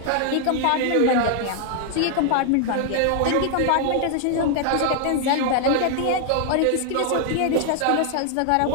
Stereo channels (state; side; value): different; both; correlation 0.00